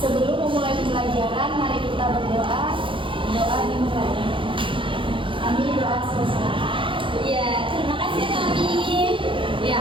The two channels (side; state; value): left; late; 0.25 ms